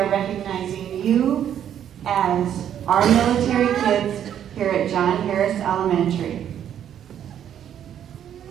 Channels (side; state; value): left; quieter; 9.8 dB